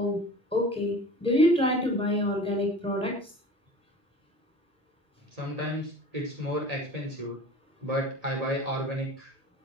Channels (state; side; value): normal; both; correlation 0.40